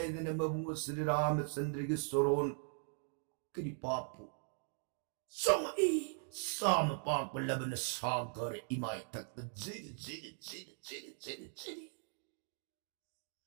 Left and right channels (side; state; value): left; silent; 51 dB below the other